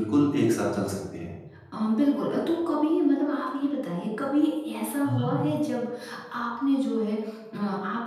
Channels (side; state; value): both; identical; correlation 1.00